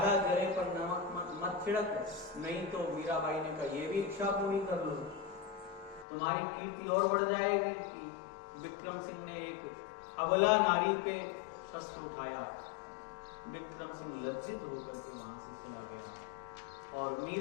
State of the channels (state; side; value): drops out; right; at 6.1 s